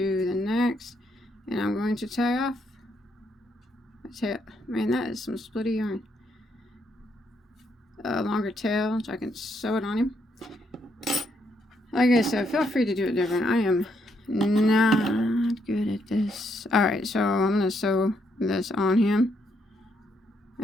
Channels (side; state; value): both; normal; correlation 0.75